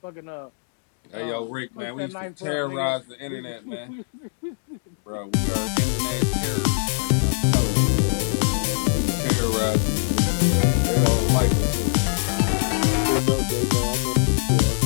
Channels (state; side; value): silent; right; digital silence